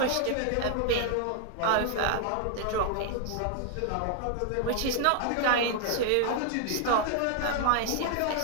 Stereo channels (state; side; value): different; both; correlation 0.00